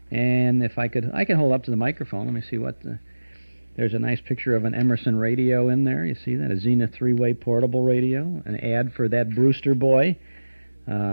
And if I can hold up to the microphone. Let me see what there's a nice picture of an Emerson radio in there. You see that? A Zenith 3-way portable radio. An ad for that Brewster boy.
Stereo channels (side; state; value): both; inverted; correlation -1.00